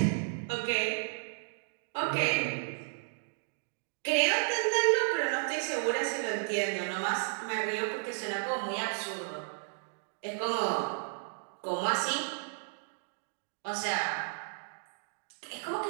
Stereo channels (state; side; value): silent; left; digital silence